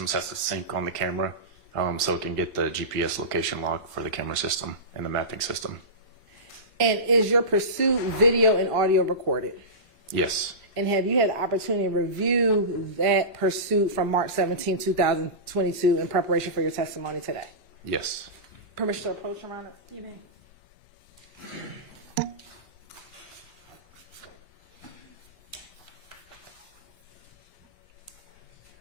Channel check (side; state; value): left; late; 1.5 ms